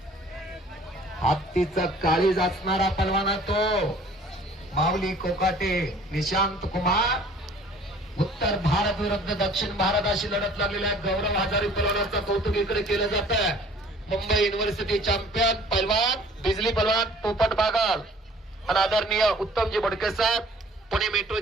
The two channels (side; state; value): both; normal; correlation 0.52